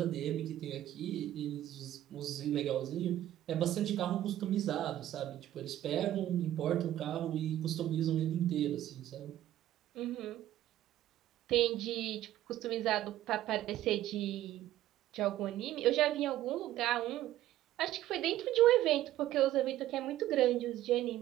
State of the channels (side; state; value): left; quieter; 13.4 dB